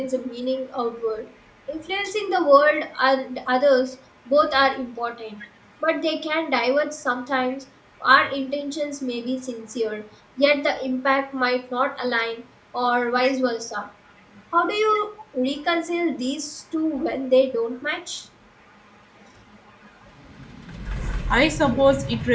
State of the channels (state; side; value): identical; both; correlation 1.00